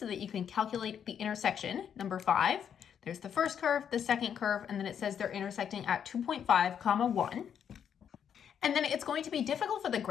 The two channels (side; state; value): right; quieter; 8.4 dB